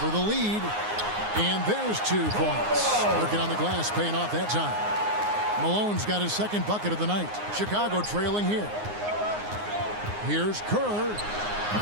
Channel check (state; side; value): late; left; 9.6 ms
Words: the lead. And there's 2 points. Working on the glass, paying off that time. Malone's got his 2nd bucket of the night. Chicago trailing here. Here's Kerr.